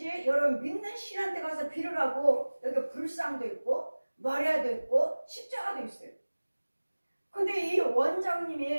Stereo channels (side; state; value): both; inverted; correlation -1.00